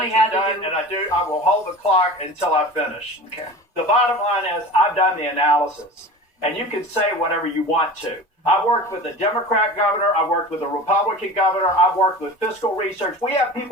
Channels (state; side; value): normal; both; correlation 0.35